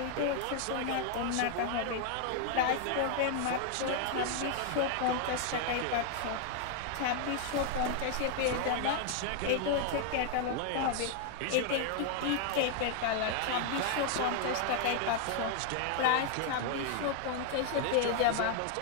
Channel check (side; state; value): both; different; correlation 0.00